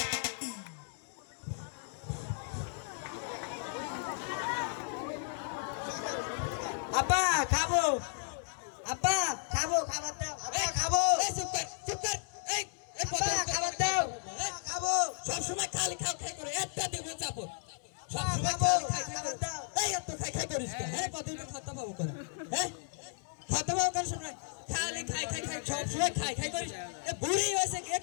আপা খাবো, আপা খাবো, খাবার দাও, আপা খাবো। চুপ কর। এই আপা খাবার দাও, খাবো। সব সময় খালি খাও খাই করে একটা দেবো চাপো। সব আপা সময় খাবো, খালি খাই খাই খাবার করে। দাও। এই এত খাই খাই করিস কেন? হ্যাঁ কতদিন খাতা পাবো করে? হ্যাঁ খাতা পাবো কেন সময়? খালি খাই খাই খাই সব সময় খাই খাই করিস। এ বুড়ি হয়েছে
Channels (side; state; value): right; silent; digital silence